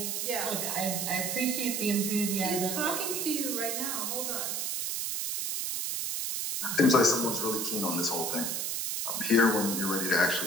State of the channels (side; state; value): right; noise; hiss, 1 dB below the sound